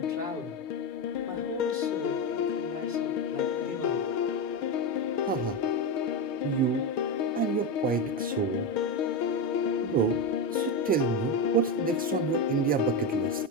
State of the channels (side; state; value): both; normal; correlation 0.13